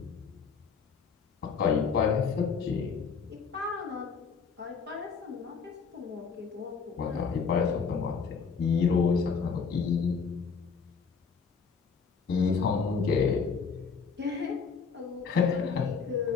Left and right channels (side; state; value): right; quieter; 5.6 dB